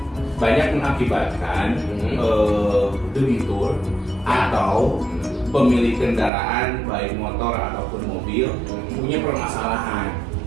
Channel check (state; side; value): drops out; left; at 6.3 s